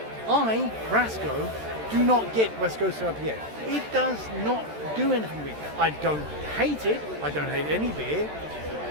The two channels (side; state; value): left; late; 13 ms